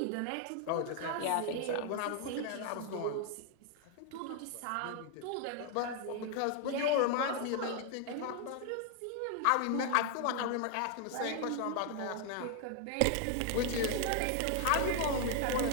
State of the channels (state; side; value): different; both; correlation 0.00